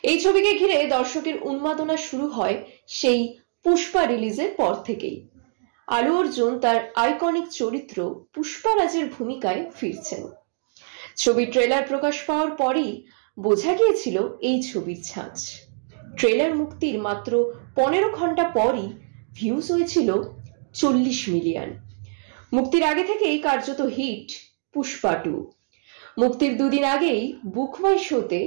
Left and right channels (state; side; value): silent; left; digital silence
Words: এই ছবিকে ঘিরে দর্শকের উন্মাদনা শুরু হয় সেই পুষ্পা রিলিজের পর থেকেই। আলু অর্জুন তার আইকনিক চরিত্র পুষ্পারাজের ভূমিকায় ফিরছেন। ছবির ট্রেলার প্রকাশ পাওয়ার পরই বোঝা গিয়েছিল এই ছবির ছাঁচ। ট্রেলার মুক্তির মাত্র 15 ঘন্টা পরই ভিউজ হয়েছিল 40 মিলিয়ন। মুক্তির আগে থেকেই কার্যত হিট পুষ্পা 2। মুক্তির দুদিন আগেই বুক মাই শোতে